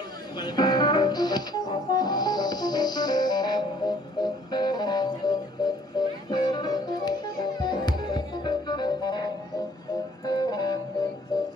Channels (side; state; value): both; normal; correlation 0.59